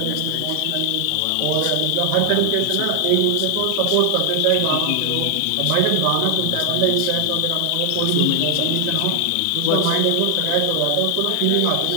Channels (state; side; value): different; both; correlation 0.00